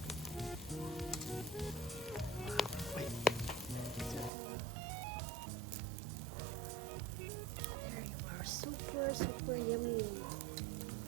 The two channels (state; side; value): drops out; left; at 4.3 s